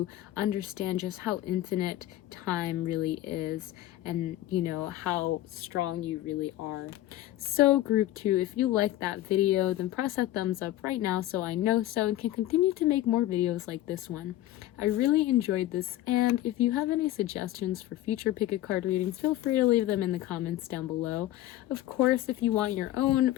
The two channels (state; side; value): quieter; right; 14.5 dB